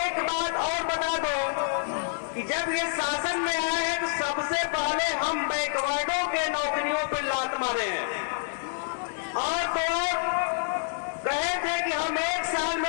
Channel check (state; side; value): silent; right; 57 dB below the other